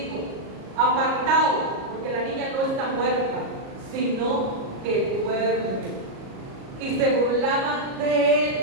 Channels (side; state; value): left; late; 37 ms